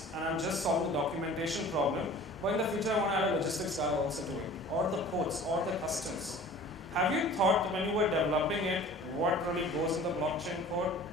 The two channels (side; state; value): both; normal; correlation 0.44